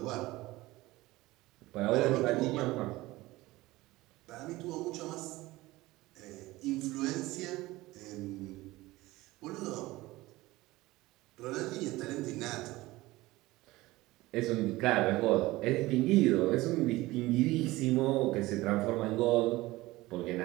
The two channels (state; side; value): quieter; left; 19.2 dB